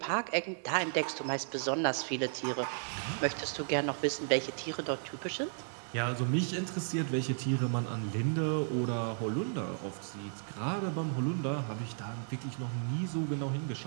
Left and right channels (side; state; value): left; silent; 55 dB below the other